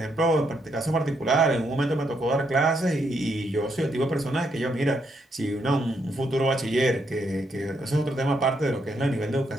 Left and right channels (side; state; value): both; normal; correlation 0.77